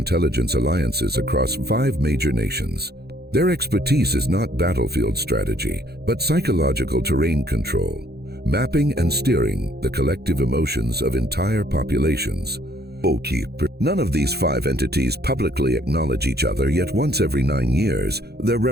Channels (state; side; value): late; left; 0.47 ms